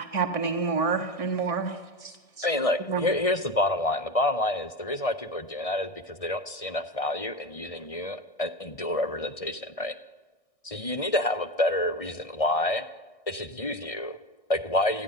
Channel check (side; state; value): right; late; 1.6 ms